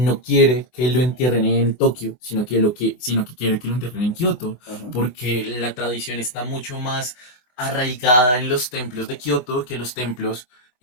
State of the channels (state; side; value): late; right; 24 ms